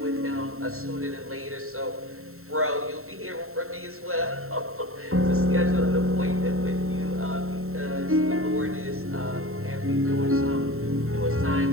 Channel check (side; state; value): left; late; 0.63 ms